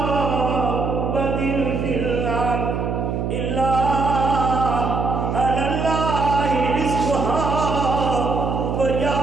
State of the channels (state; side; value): noise; right; hum, 1 dB below the sound